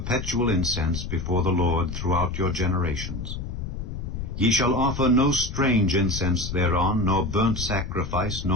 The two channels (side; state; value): left; noise; rumble, 6 dB below the sound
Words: incense before the Lord throughout your generations. Ye shall offer no strange incense thereon, nor burnt sacrifice,